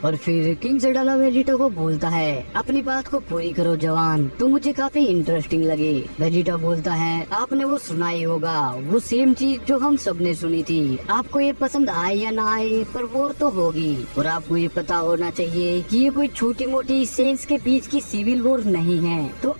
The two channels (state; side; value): inverted; both; correlation -1.00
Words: और फिर किंग सडाला वेजिटा को बोलता है अपनी बात को पूरी करो जवान, तुम मुझे काफी इंटरेस्टिंग लगे। वेजिटा बोलता है आपने वो सुना ही होगा, वो सेम चीज जो हम सबने सुनी थी। आपको ये पसंद आए या ना आए पर वॉर तो होगी, और आपको ये पता होना चाहिए कि ये कोई छोटी मोटी सेंस के बीच की सिविल वॉर नहीं है। तो